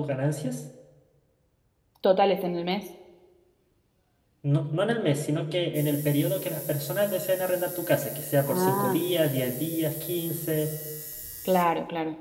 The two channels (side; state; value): both; identical; correlation 1.00